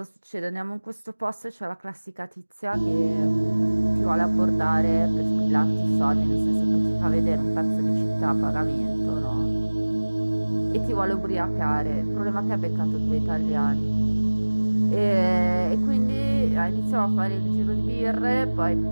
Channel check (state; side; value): inverted; both; correlation -1.00